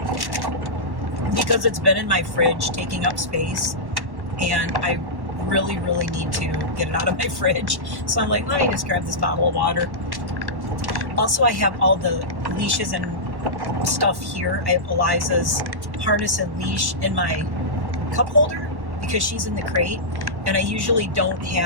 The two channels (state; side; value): late; left; 1.1 ms